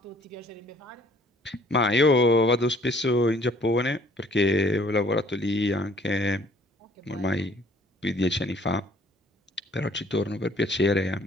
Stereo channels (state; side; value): normal; both; correlation 0.58